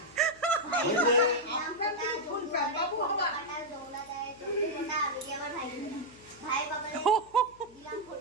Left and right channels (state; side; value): noise; left; hum, 26 dB below the sound